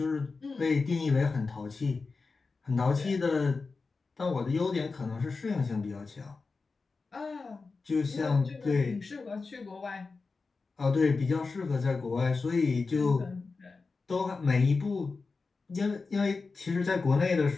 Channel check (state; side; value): quieter; right; 4.2 dB